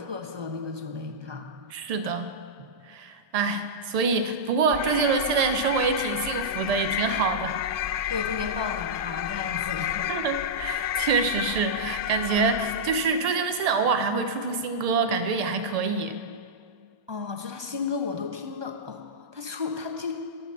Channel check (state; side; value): late; left; 1.7 ms